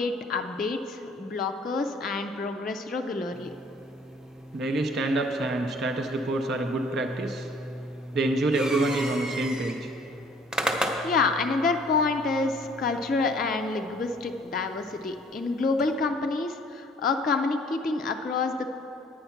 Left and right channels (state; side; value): normal; both; correlation 0.56